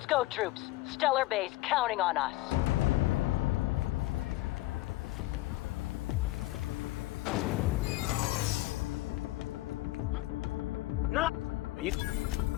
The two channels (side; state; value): right; quieter; 18.3 dB